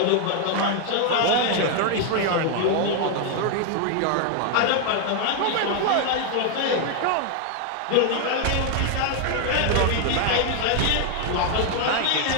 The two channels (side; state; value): both; different; correlation 0.00